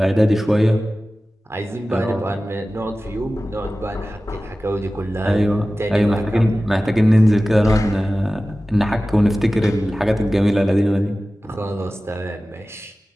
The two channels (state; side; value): normal; both; correlation 0.96